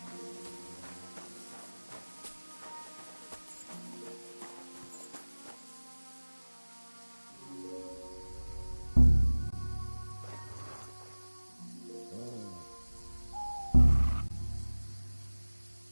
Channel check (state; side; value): inverted; both; correlation -1.00